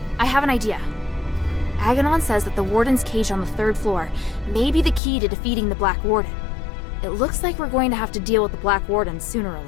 I have an idea. Aganon says that the Warden's cage on the 3rd floor may be the key to defeating the Black Warden. It looks like we're going to have to deal with the Black Warden sooner or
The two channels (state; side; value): drops out; right; at 5.0 s